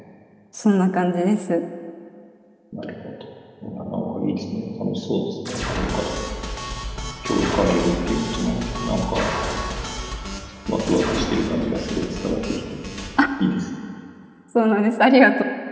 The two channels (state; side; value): identical; both; correlation 1.00